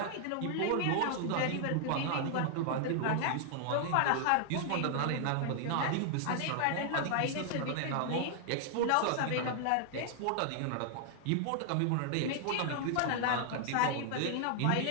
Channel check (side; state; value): both; different; correlation 0.00